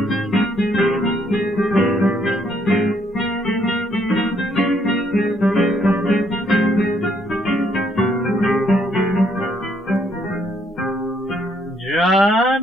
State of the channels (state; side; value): normal; both; correlation 0.70